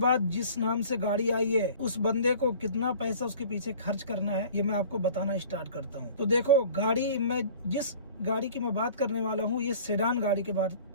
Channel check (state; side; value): inverted; both; correlation -0.46